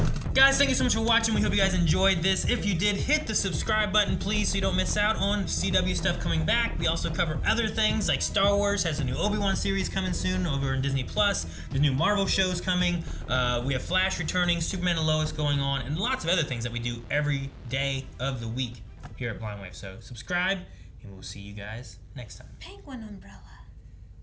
Guys, thank you so much for watching. We hope you guys enjoyed this. If you did, hit the subscribe button, please, so you don't miss out on CW stuff coming back. We also cover other things, like Star Wars has a new Obi-Wan series coming soon over in Disney+. There's new Marvel shows coming. We have Flash returning, Superman and Lois going on, and lots of other things that we do every day of the week here at Blind Wave. So subscribe, and we'll see you guys next time. Penguin umbrella.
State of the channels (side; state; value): both; identical; correlation 1.00